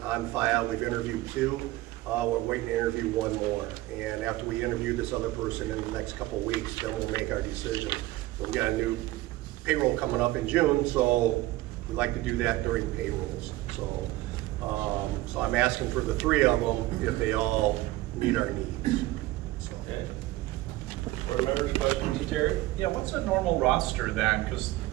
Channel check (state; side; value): quieter; left; 17.7 dB